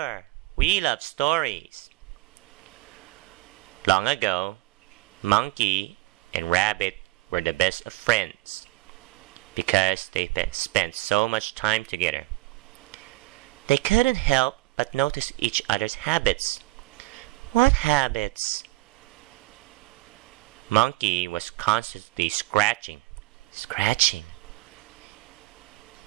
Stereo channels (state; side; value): quieter; left; 19.7 dB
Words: we love stories. Long ago, Monkey and Rabbit were the best of friends because they spent so much time together. They couldn't help but notice each other's habits. What habits? Monkey was constantly scratching.